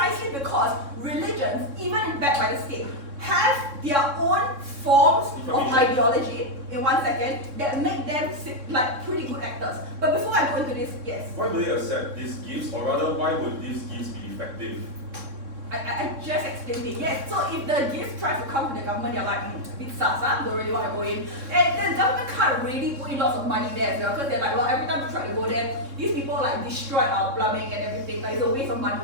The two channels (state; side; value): late; left; 3.6 ms